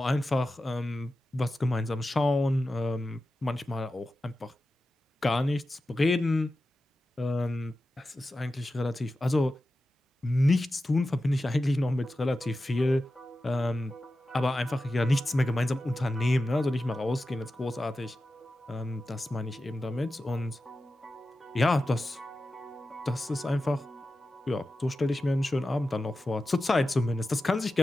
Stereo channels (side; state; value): both; normal; correlation 0.93